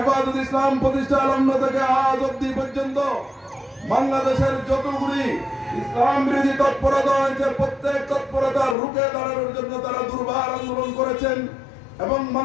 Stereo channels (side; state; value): right; drops out; at 8.8 s